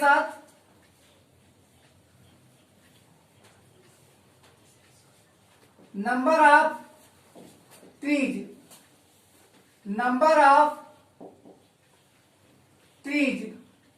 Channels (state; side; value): identical; both; correlation 1.00